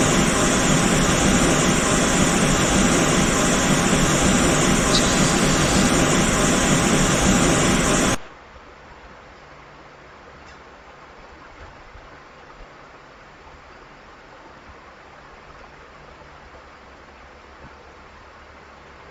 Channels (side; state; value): both; identical; correlation 1.00